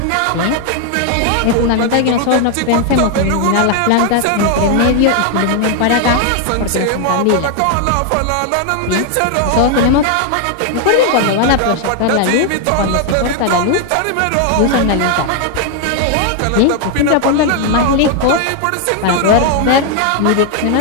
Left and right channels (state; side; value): different; both; correlation 0.00